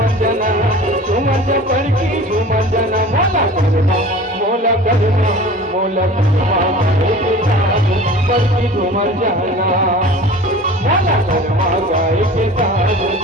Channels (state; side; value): normal; both; correlation 0.41